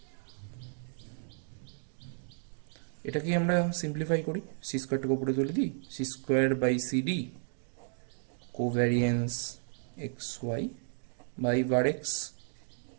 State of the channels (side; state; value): left; silent; digital silence